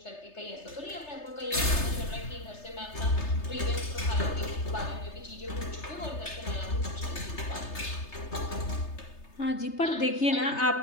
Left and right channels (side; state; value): right; late; 3.3 ms